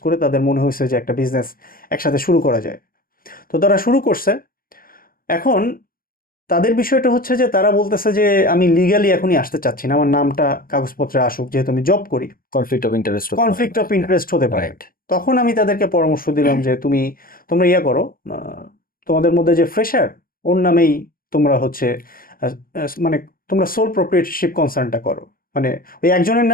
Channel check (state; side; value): late; right; 0.42 ms